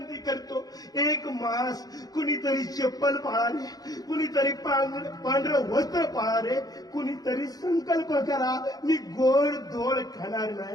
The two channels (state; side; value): late; right; 0.18 ms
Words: करतो. एक मास कुणीतरी चप्पल पाळा रे, कुणीतरी पांढरं वस्त्र पाळा रे. कुणीतरी संकल्प करा, मी गोड धोड खाणार